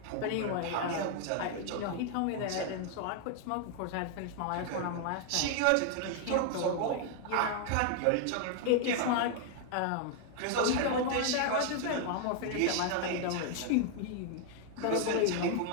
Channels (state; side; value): different; both; correlation 0.00